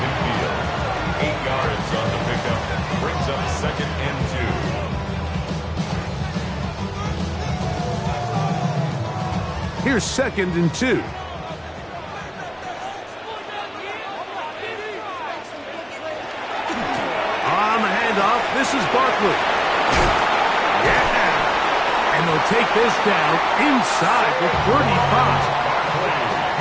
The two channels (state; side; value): identical; both; correlation 1.00